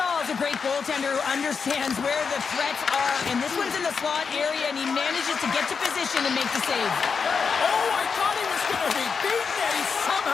great goaltender who understands where the threats are, and this one's in the slot area, and he manages to get to position and make the save. Oh, I thought he was going to be beaten, and he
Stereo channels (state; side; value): quieter; right; 5.7 dB